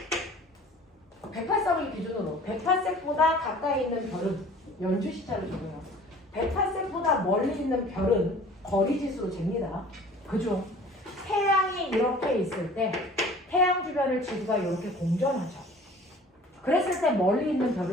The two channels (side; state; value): both; normal; correlation 0.47